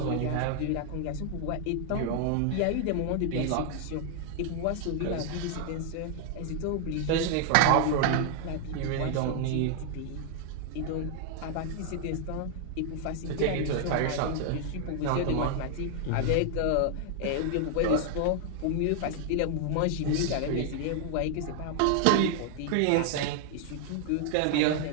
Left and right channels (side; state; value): both; different; correlation 0.00